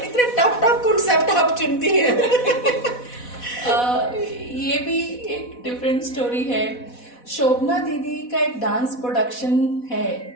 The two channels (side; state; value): right; late; 4.1 ms